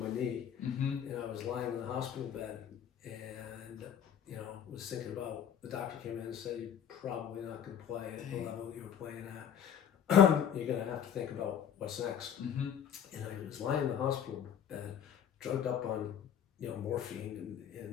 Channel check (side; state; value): right; quieter; 8.9 dB